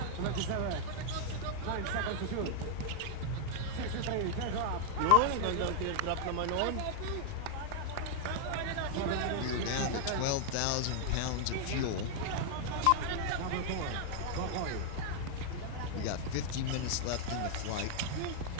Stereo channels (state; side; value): different; both; correlation 0.00